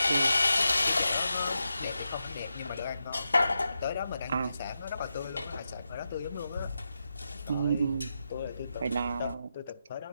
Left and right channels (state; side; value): inverted; both; correlation -0.87